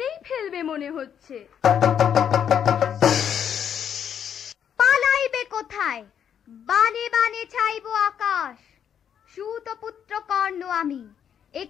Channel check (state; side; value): quieter; right; 8.6 dB